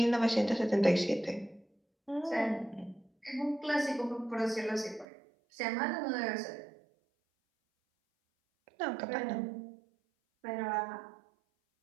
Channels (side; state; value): left; drops out; at 5.1 s